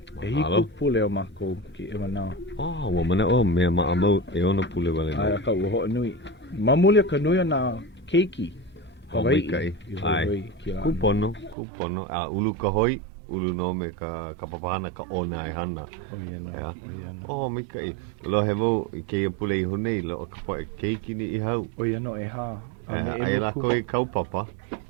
Hiku pule o mako ki e manao. Ua mana o mea maamau ona pule wale. Ai ka ua ho nui. Mamuli ka nui na keiki. Hawaiʻi. Ai. Kupono. Ulu ka hoi. Ulu no me ka papahana ka ona e hana. Mai kai. Lo he mo ke ia pule I honei lo ka poe keiki ni I hau. Oia no e ha. Ai lako I kaupapa.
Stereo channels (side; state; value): left; drops out; at 11.6 s